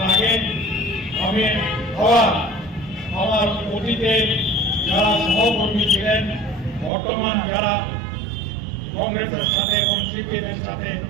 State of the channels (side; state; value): left; drops out; at 6.9 s